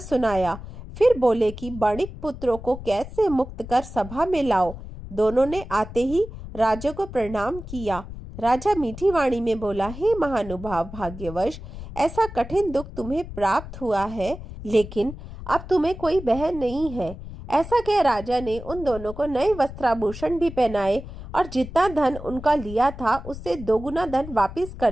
फिर बोले कि बाणिक पुत्रों को कैद से मुक्त कर सभा में लाओ। दोनों ने आते ही राजा को प्रणाम किया। राजा मीठी वाणी में बोला, हे महानुभाव, भाग्यवश ऐसा कठिन दुख तुम्हें प्राप्त हुआ है, लेकिन अब तुम्हें कोई बहन नहीं है। ऐसा कह राजा ने उन दोनों को नए वस्त्राभूषण भी पहनाए और जितना धन उनका लिया था उससे दोगुना धन वापस कर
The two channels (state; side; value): noise; left; rumble, 12 dB below the sound